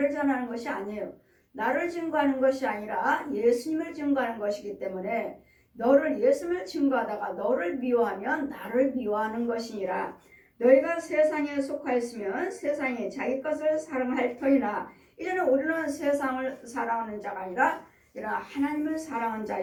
전하는 것이 아니에요. 나를 증거하는 것이 아니라 예수님을 증거하는 것이기 때문에 너를 예수님을 증거하다가 너를 미워하면 나를 미워하는 것이니라. 너희가 세상에 속하였으면 세상이 자기 것을 사랑할 터이나 이제는 우리는 세상을 사랑하는 자가 아니라 하나님을 사랑하는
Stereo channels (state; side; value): identical; both; correlation 1.00